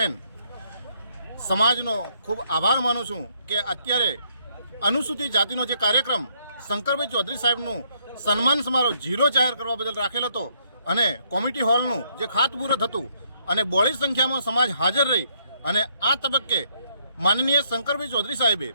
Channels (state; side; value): inverted; both; correlation -0.71